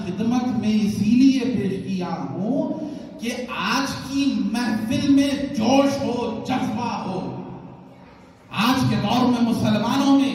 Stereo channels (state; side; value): identical; both; correlation 1.00